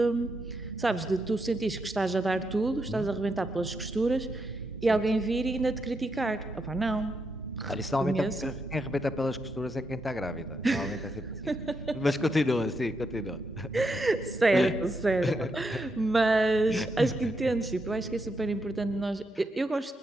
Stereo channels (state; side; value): normal; both; correlation 0.81